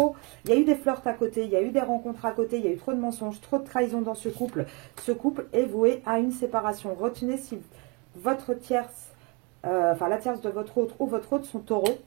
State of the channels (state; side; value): quieter; left; 28.9 dB